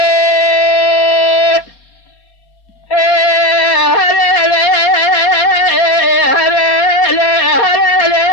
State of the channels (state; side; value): late; right; 4.3 ms